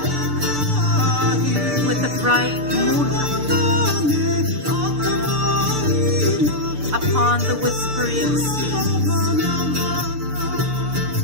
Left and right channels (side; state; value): left; late; 6.8 ms